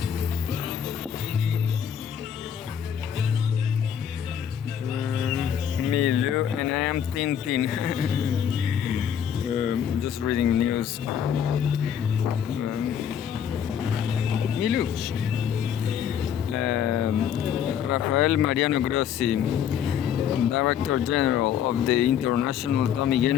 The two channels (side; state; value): right; quieter; 8.8 dB